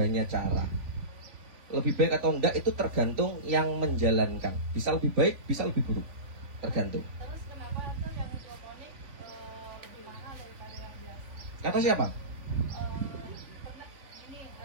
cara. Lebih baik atau enggak itu tergantung yang menjalankan. Bisa lebih baik, bisa lebih buruk, tergantung. Terus kenapa tuh yang hidroponik lebih mahal daripada yang biasa? Kata siapa?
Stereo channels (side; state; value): left; late; 3.5 ms